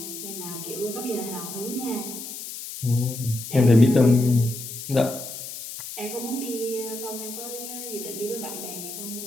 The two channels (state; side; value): noise; left; hiss, 9 dB below the sound